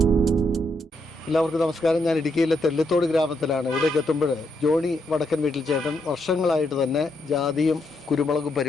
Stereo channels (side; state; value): both; normal; correlation 0.79